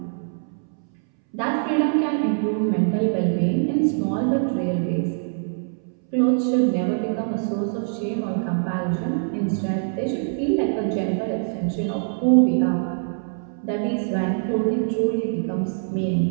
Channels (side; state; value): left; silent; 63 dB below the other